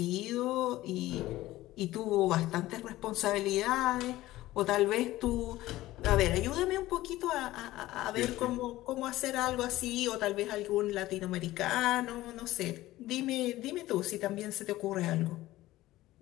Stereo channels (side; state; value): right; quieter; 16.5 dB